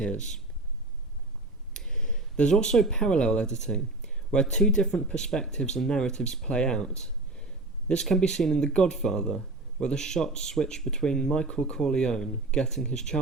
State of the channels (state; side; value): quieter; left; 3.0 dB